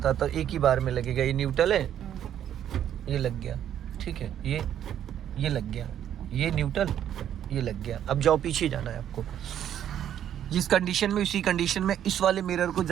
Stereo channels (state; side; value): quieter; left; 10.3 dB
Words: हूँ, एक ही बार में लगेगा। ये न्यूट्रल है, ये लग गया, ठीक है, ये लग गया, ये न्यूट्रल, ये लग गया। अब जाओ, पीछे जाना है आपको, जिस कंडीशन में, उसी कंडीशन में इस वाले मिरर को